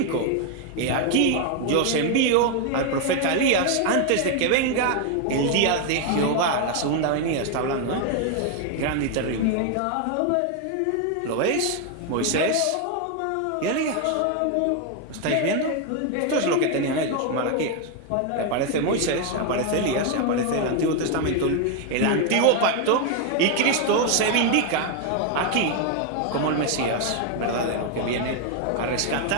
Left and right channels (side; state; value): both; different; correlation 0.01